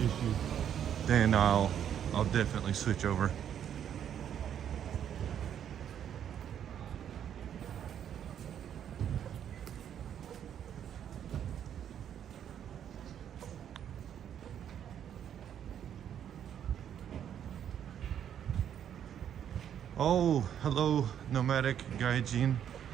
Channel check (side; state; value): left; quieter; 9.4 dB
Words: issue, then I'll definitely switch over. Oh, hello, nomadic gaijin.